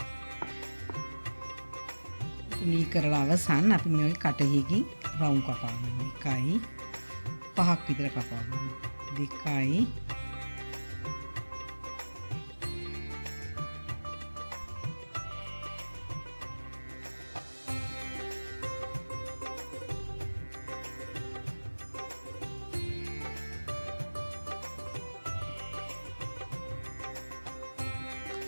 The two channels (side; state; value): both; inverted; correlation -1.00